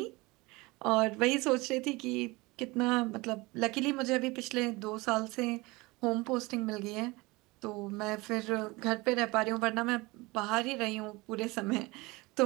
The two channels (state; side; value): quieter; left; 23.1 dB